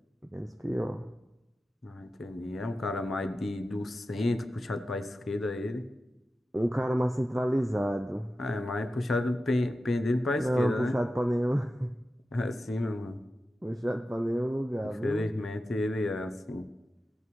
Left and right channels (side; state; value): both; normal; correlation 0.92